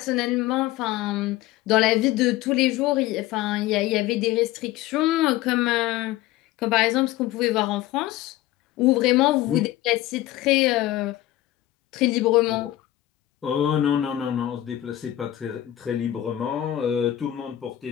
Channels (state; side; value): quieter; right; 14.5 dB